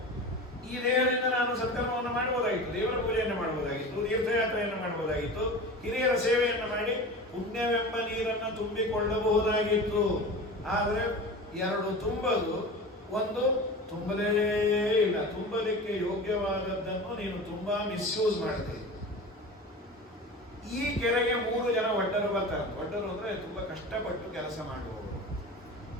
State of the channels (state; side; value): normal; both; correlation 0.33